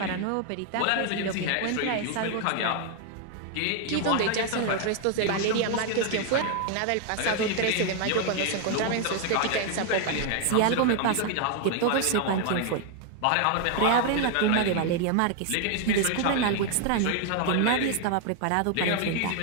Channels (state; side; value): different; both; correlation 0.00